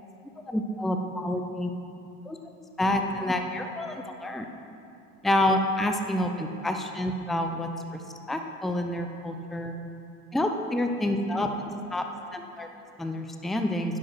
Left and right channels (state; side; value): normal; both; correlation 0.64